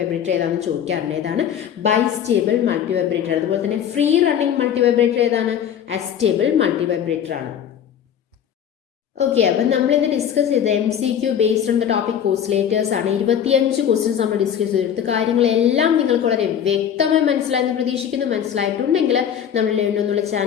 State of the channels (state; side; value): quieter; right; 9.0 dB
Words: ഏതാണെന്ന് ചോദിക്കാറുണ്ട്. ഏതാണ്? Bistable multivibrator. അതുപോലെ തന്നെ ഫ്രീ റണ്ണിങ് മൾട്ടിവൈബ്രേറ്റർ ഏതാണ്? അസ്റ്റേബിൾ മൾട്ടിവൈബ്രേറ്റർ ആണ്. ഓക്കെ, അപ്പം നമ്മൾ ഇന്ന് ഡിസ്കസ് ചെയ്ത MCQ based on the topic oscillators ആണ്. 25 ക്വസ്റ്റ്യൻസ് നമ്മൾ ഡിസ്കസ് ചെയ്തെടുത്ത് കാര്യങ്ങളെല്ലാം നിങ്ങൾക്ക് വളരെ വ്യക്തമായി മനസ്സിലായെന്ന് പ്രതീക്ഷിക്കുന്നു. മനസ്സിലായിട്ടുണ്ടെങ്കിൽ നമ്മൾ ലേൺ എന്നുള്ള